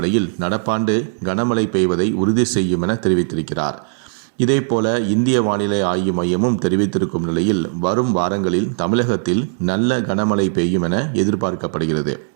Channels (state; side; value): silent; left; digital silence